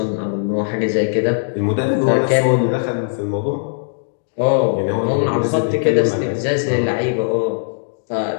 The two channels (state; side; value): silent; right; digital silence